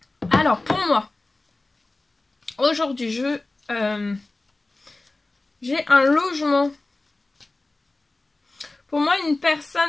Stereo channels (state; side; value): quieter; right; 3.0 dB